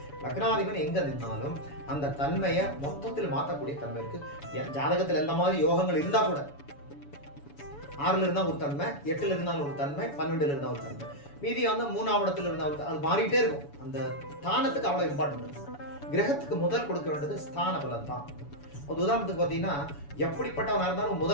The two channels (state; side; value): late; right; 7.0 ms